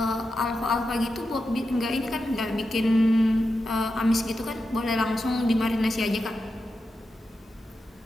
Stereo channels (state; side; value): normal; both; correlation 0.89